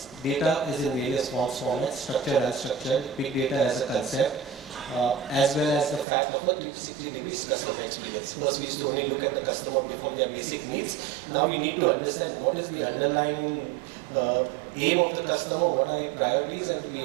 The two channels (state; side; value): drops out; left; at 6.1 s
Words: data is in various forms, formats, structured and unstructured, big data as a concept, as well as the fact of a 360 degrees customer experience. First, we used to only look at the customer before their basic needs. Now we need to understand what is the underlying aim of the customer, what are the priorities, and to